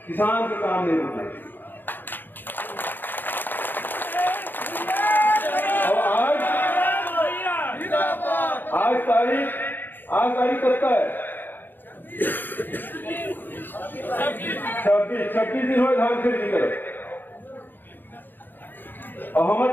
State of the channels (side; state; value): right; late; 0.092 ms